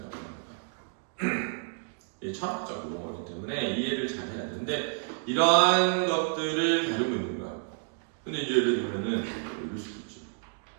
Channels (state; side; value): silent; left; 58 dB below the other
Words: 하는 거야. 철학적 용어이기 때문에 이해를 잘 해야 되는데, 이러한 것들을 다루고 있는 거야. 근데 이제 예를 들면은 이럴 수도 있지.